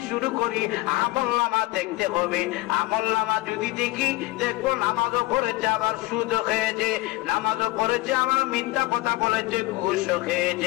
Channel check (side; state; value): right; quieter; 19.9 dB